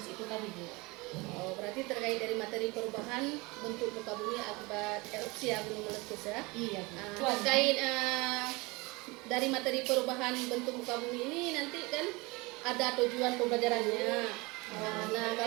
itu tadi Bu. Oh, berarti terkait dari materi perubahan bentuk muka bumi akibat erupsi gunung meletus ya? Iya Bu. Terkait dari materi perubahan bentuk muka bumi ini nanti kan ada tujuan pembelajarannya. Nah,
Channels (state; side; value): quieter; left; 24.9 dB